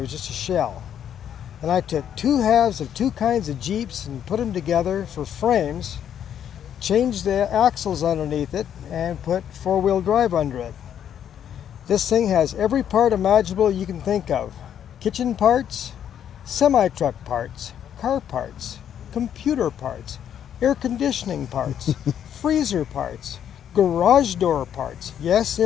just a shell. And I took two halves of two kinds of Jeeps and put them together for frames, changed the axles underneath it, and put four-wheel drive under it. This thing has every part imaginable you can think of. Kitchen parts, semi-truck parts, car parts, computer parts, air conditioning parts, freezer parts, garage door parts. Yes,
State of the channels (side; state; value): right; quieter; 9.5 dB